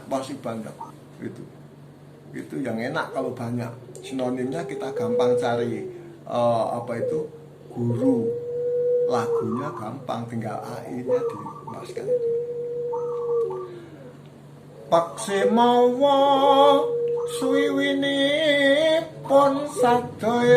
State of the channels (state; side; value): identical; both; correlation 1.00